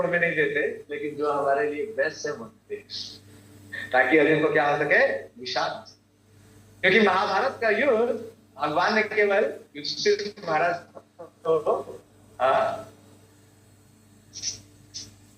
हमें नहीं देते, लेकिन जो हमारे लिए बेस्ट है वो देते हैं, ताकि अर्जुन को क्या हो सके? विषाद। क्योंकि महाभारत का युद्ध भगवान ने केवल युधिष्ठिर महाराज को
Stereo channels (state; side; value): identical; both; correlation 1.00